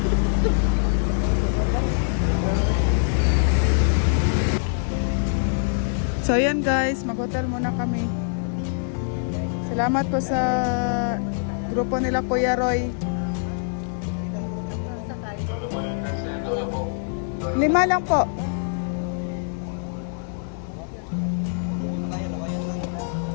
So ayan guys, mag-hotel muna kami. Salamat po sa grupo nila Kuya Roy. 5 lang po.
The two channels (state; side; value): silent; right; digital silence